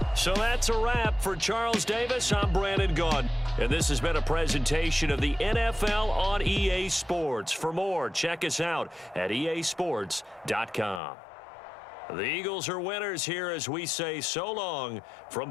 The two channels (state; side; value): drops out; right; at 11.0 s